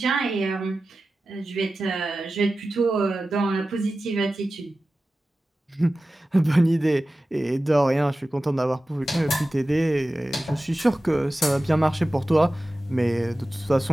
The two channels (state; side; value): normal; both; correlation 0.95